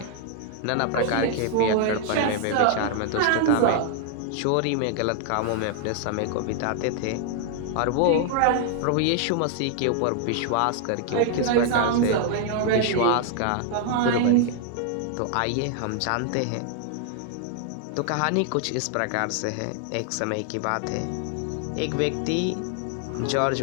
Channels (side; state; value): both; different; correlation 0.00